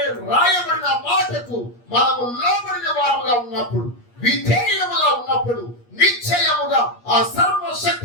రాయబడిన మాటకు మనము లోబడిన వారుగా ఉన్నప్పుడు, విధేయులముగా ఉన్నప్పుడు నిశ్చయముగా ఆ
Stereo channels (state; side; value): late; right; 8.4 ms